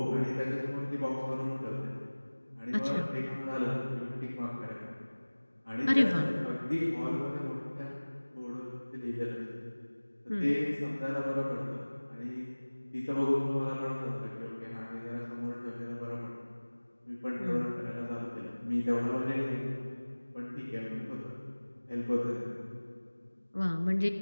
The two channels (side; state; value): both; inverted; correlation -1.00